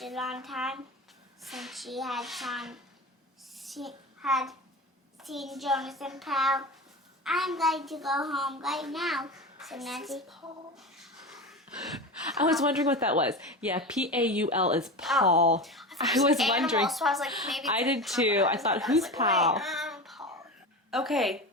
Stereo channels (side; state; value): both; normal; correlation 0.27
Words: a long time since she had seen Jonas and Pal. I'm going to go home right now, said Nancy. I was wondering what that was. Yeah, P-A-U-L is Paul. I was wondering. So I was like, maybe I did too. I thought, who's Paul? Paul. Okay,